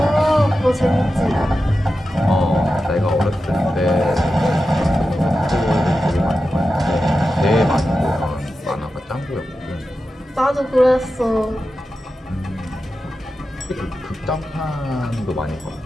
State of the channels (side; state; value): both; normal; correlation 0.92